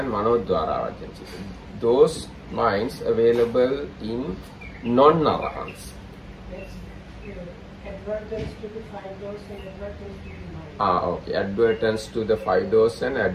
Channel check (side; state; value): both; identical; correlation 1.00